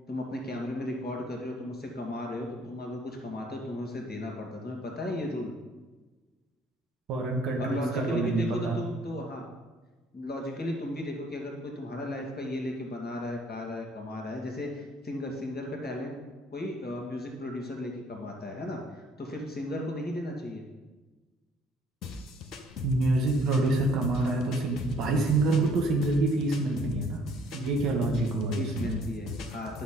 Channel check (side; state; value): both; normal; correlation 0.60